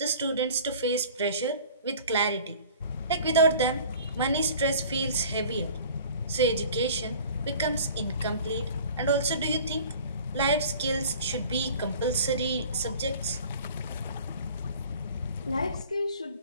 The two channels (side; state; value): both; inverted; correlation -0.46